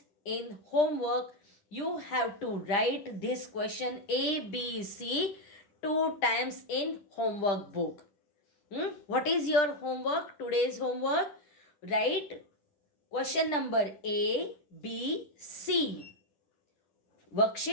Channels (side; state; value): right; late; 10 ms